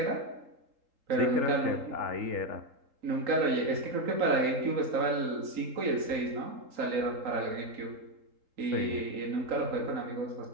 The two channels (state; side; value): late; left; 3.8 ms